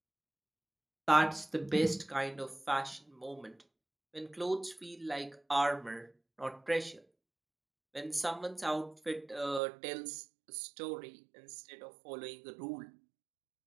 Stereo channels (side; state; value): left; drops out; at 9.6 s